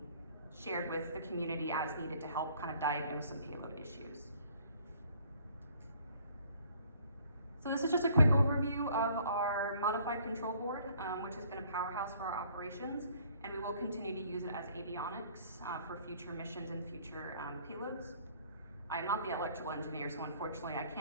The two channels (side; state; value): both; inverted; correlation -0.59